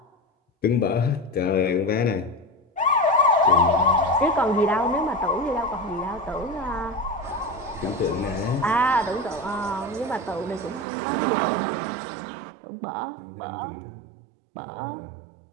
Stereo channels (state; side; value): drops out; left; at 10.9 s